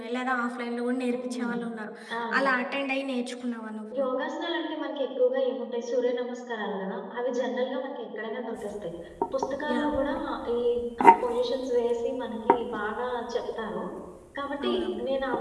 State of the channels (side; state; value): both; identical; correlation 1.00